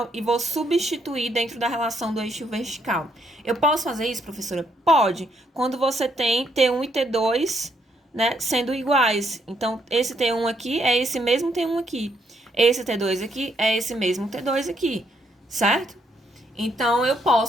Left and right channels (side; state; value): both; normal; correlation 0.73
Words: e vou substituir dentro da relação do eixo vertical. Eu posso fazer isso, professora? Pode. Quando você tem T1 e T2, né, sendo iguais. Então, esse T1 aqui é esse mesmo T1 aqui. Esse T2 aqui é esse mesmo T2 aqui, certo? Então, eu